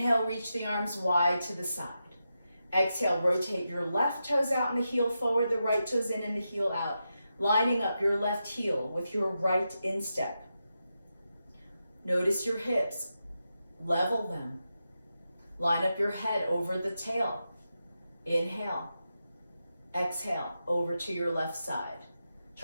reach the arms wide to the side. Exhale, rotate your left toes out and the heel forward, the right toes in and the heel out. lining up your left heel with your right instep. Notice your hips, level them. Line up your head over the tail. Inhale. Exhale, over to your left side.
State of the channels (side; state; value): both; inverted; correlation -0.88